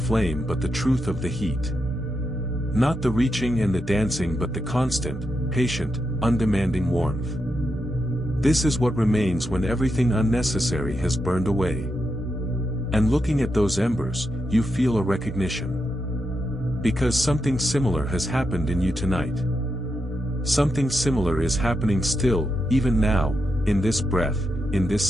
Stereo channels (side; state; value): both; normal; correlation 0.85